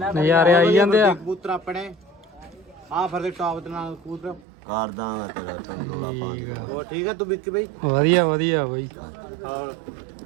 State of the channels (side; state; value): left; drops out; at 4.4 s